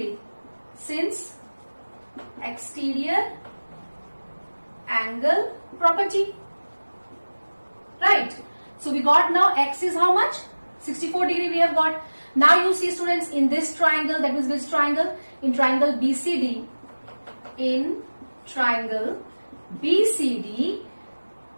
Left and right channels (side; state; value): both; inverted; correlation -1.00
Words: since exterior angle property. Right. So we got now X is how much? 64 degree we have got. Now you see students, in this triangle, that means which triangle? In triangle BCD. In triangle BCD,